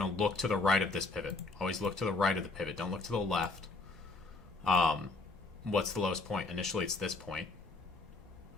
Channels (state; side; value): quieter; right; 3.5 dB